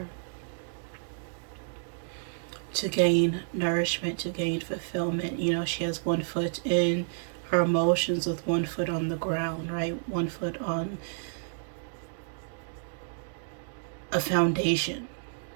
to gain nourishment, to gain fulfillment. You know, she has one foot in her emotions with one foot on the ground, right? One foot on a foundation,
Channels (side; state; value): left; silent; digital silence